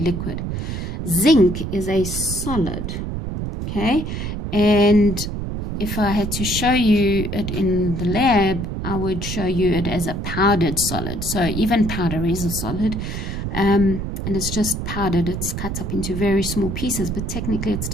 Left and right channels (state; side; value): noise; right; rumble, 4 dB below the sound